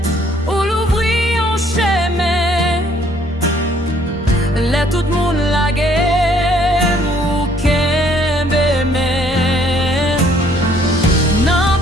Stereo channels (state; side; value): normal; both; correlation 0.63